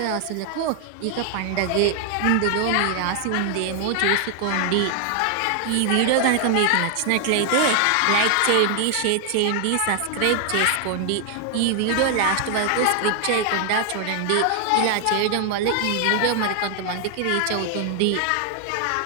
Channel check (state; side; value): different; both; correlation 0.00